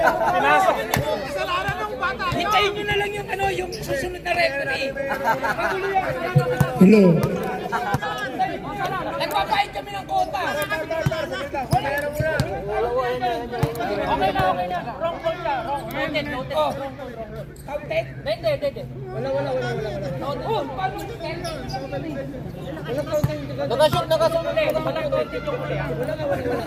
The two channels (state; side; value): identical; both; correlation 1.00